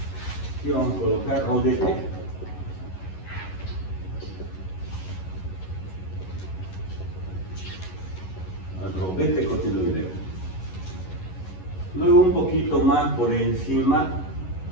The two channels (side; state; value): right; late; 11 ms